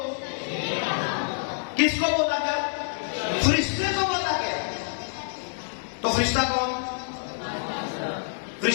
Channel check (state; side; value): silent; right; digital silence